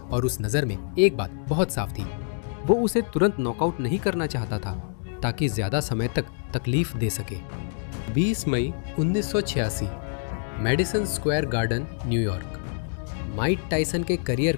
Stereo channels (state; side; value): silent; right; digital silence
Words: और उस नज़र में एक बात बहुत साफ थी। वो उसे तुरंत नॉकआउट नहीं करना चाहता था ताकि ज़्यादा समय तक तकलीफ दे सके। 20 मई 1986, Madison Square garden, New York. Mike Tyson के करियर